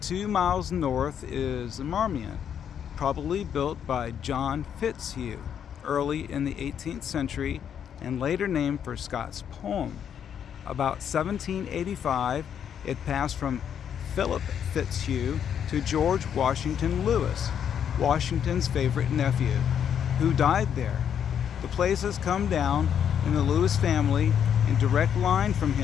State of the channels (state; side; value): quieter; right; 8.6 dB